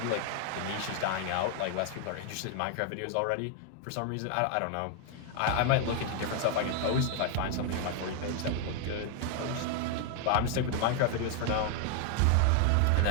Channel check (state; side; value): different; both; correlation 0.00